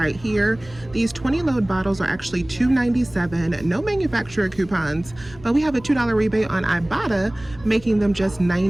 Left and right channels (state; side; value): noise; right; hum, 21 dB below the sound